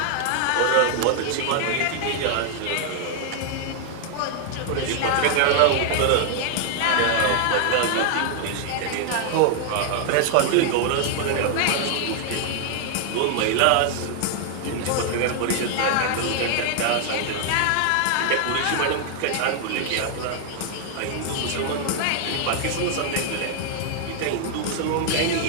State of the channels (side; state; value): both; different; correlation 0.00